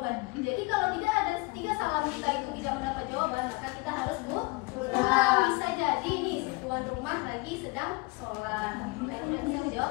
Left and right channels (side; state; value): right; quieter; 26.1 dB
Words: Jadi kalau tidak ada 3 salam kita itu tidak mendapat jawaban, maka kita harus pulang. Bisa jadi nih si tuan rumah lagi sedang sholat, tidak bisa